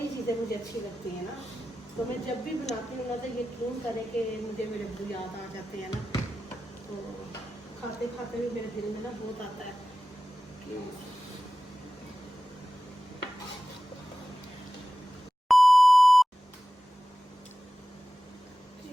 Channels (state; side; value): normal; both; correlation 0.95